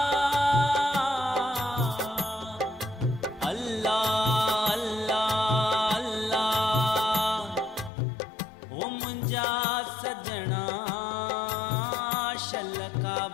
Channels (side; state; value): right; drops out; at 7.9 s